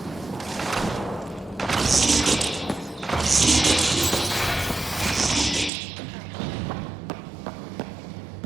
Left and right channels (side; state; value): left; drops out; at 5.7 s